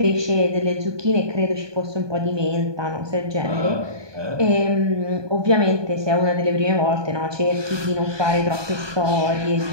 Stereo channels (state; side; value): late; left; 1.2 ms